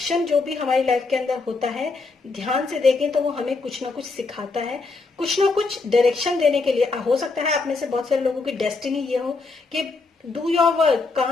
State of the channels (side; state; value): right; quieter; 3.9 dB